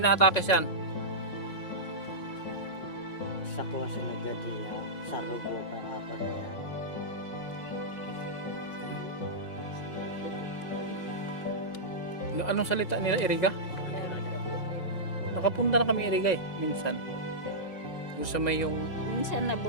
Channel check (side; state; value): right; late; 5.5 ms